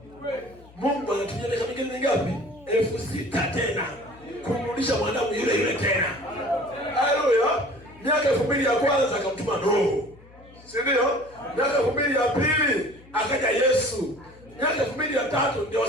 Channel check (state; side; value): noise; left; hum, 24 dB below the sound